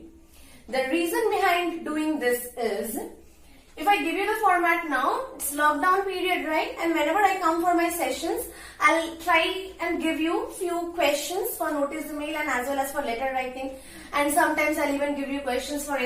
The reason behind doing this is, if I give you the format now, it's lockdown period, right? And whenever I come for my sessions, I'll try and give you few questions for notice email and as well as for letter writing. And sometimes I'll even give you questions for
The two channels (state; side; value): identical; both; correlation 1.00